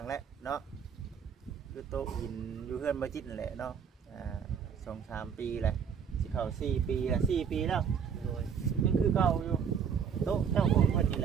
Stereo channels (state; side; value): quieter; left; 7.1 dB